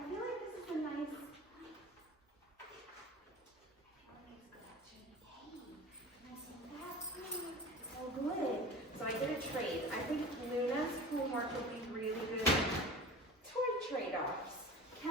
feel like this is a nice. So good. So I did a trade. I think Luna's homework would be really good toy trade-offs.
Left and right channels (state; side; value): normal; both; correlation 0.37